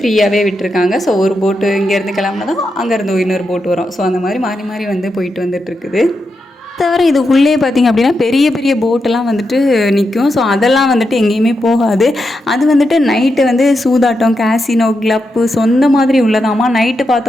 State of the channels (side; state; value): both; normal; correlation 0.86